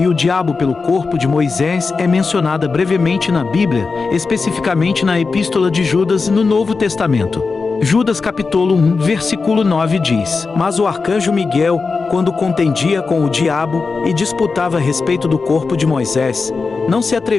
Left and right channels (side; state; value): right; quieter; 4.5 dB